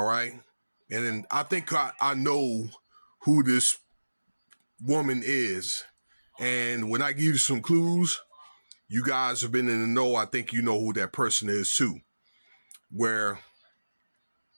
right. And then I think I know who this woman is. And when I give you some clues, you guys have been in the know. I think you know who that person is too. Where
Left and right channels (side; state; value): both; inverted; correlation -1.00